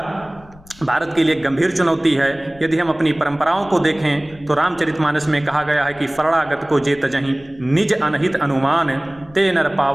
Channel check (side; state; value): left; noise; rumble, 24 dB below the sound